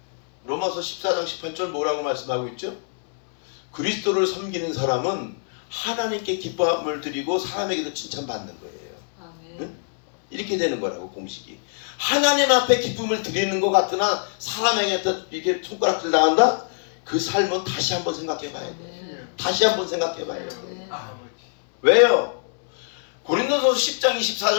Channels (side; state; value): right; silent; 63 dB below the other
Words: 로마서 14장 18절 뭐라고 말씀하고 있죠? 그리스도를 섬기는 사람은 하나님께 기쁨을 드리고 사람에게도 칭찬받는 거예요. 응? 이렇게 되는 거라고 공식이. 하나님 앞에 기쁨을 드리는 것 같으나 사람에게 이렇게 손가락질 당한다? 그 삶은 다시 한번 생각해 봐야 돼. 다시 한번 생각해 봐요. 왜요? 고린도서 10장